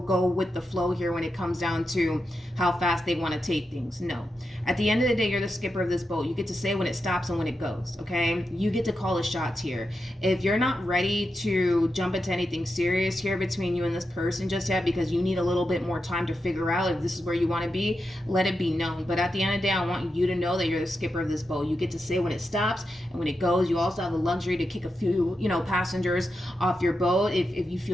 with the flow here when it comes down to how fast they want to take things. No. At the end of the day, you're the skipper of this boat. You get to say when it stops and when it goes, okay? You get to call the shots here. If you're not ready to jump into anything serious here between you and this person just yet, because you need a little bit more time to figure out if this is where you want to be, let it be known. But at the end of the day, I want you to know that you're the skipper of this boat. You get to say when it stops and when it goes. You also have the luxury to kick a few, you know, passengers off your boat if you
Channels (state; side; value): normal; both; correlation 0.88